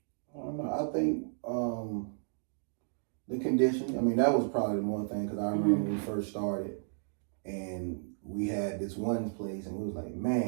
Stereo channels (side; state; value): left; silent; digital silence